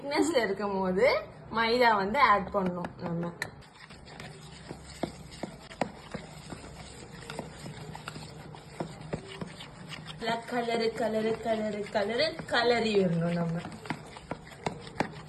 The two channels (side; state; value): both; identical; correlation 1.00